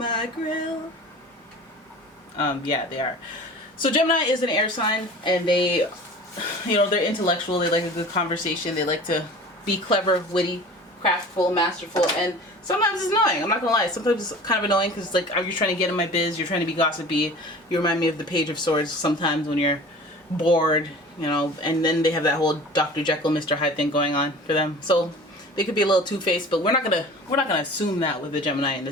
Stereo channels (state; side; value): normal; both; correlation 0.41